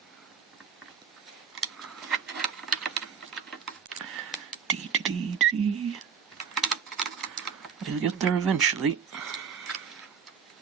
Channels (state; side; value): quieter; left; 7.0 dB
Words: We'll get there eventually.